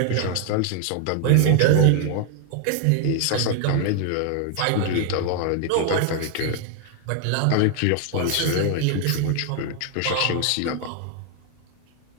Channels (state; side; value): different; both; correlation 0.00